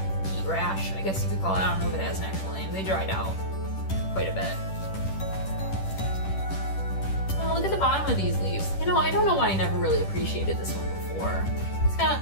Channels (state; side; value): late; right; 10 ms